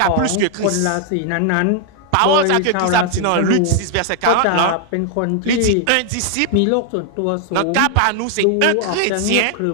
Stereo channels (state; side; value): different; both; correlation 0.00